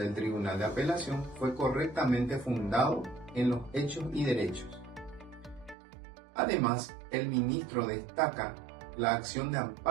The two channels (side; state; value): left; drops out; at 5.8 s